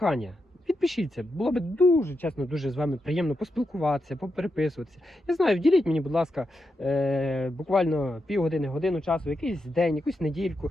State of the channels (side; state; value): both; normal; correlation 0.86